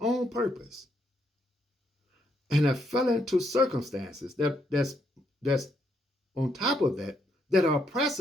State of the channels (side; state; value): both; normal; correlation 0.75